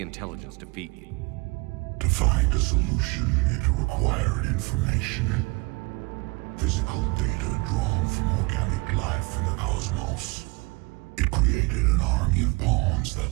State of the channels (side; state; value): left; quieter; 26.9 dB